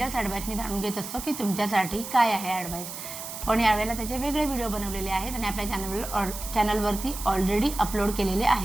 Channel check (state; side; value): noise; right; hiss, 9 dB below the sound